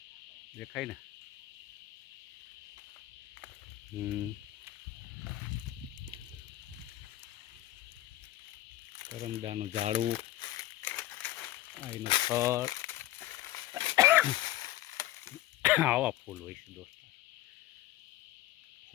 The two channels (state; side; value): quieter; right; 15.5 dB